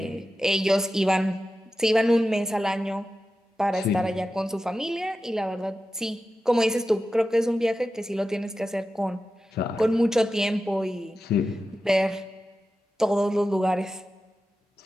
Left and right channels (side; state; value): both; normal; correlation 0.92